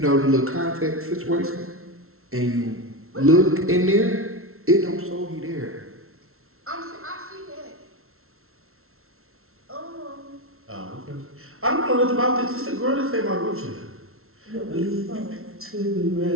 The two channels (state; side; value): late; left; 0.62 ms